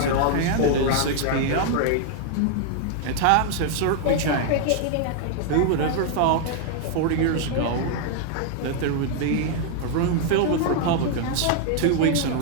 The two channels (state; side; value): different; both; correlation 0.00